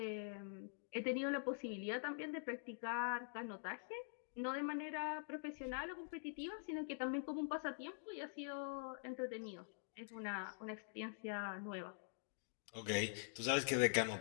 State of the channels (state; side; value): silent; right; digital silence